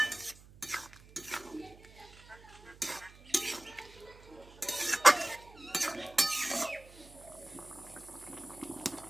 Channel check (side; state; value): right; noise; hum, 22 dB below the sound